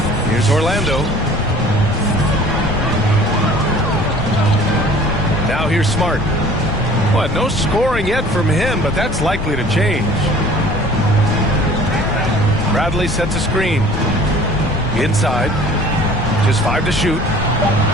Here's Orlando. Now here's Smart. Well, no scoring yet from him, but that's likely to change. Bradley sets a screen. Inside. Just 5 to shoot.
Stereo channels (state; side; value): noise; left; rumble, 6 dB below the sound